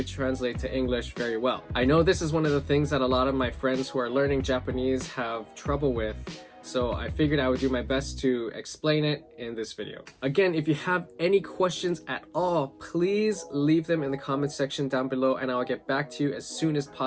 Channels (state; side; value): identical; both; correlation 1.00